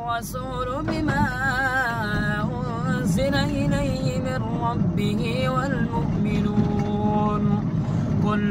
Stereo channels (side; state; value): both; identical; correlation 1.00